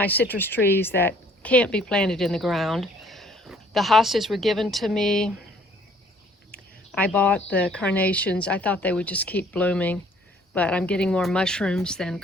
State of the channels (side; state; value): both; normal; correlation 0.58